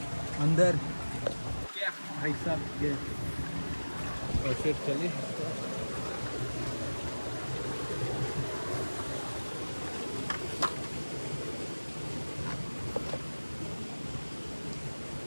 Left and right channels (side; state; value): both; inverted; correlation -1.00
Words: अंदर। क्या भाई साहब ये, और फिर चलिए।